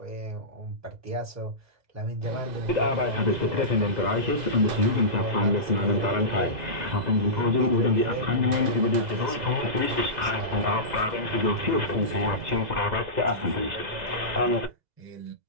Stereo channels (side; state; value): left; late; 2.0 ms